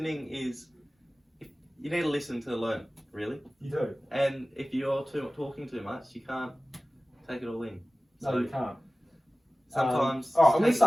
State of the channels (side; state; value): both; normal; correlation 0.97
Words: is. You need to listen to learn, really. You do. And if you're talking too much, you can't take it all in. No, you can't. Sometimes. Alright, I'm going to